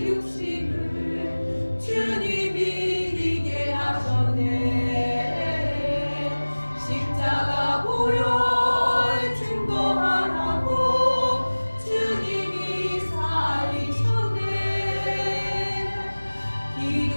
육신을 주님이 이기게 하셨네. 십자가 보혈 증거하라고 주님이 살리셨네.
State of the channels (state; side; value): inverted; both; correlation -1.00